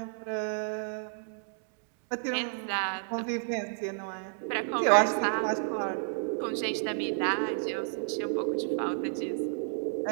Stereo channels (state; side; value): silent; left; digital silence